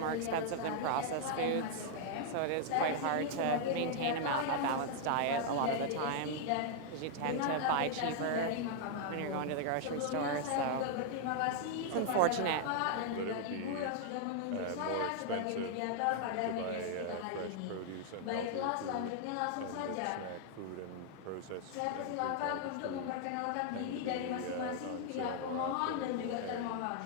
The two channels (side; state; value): both; different; correlation 0.00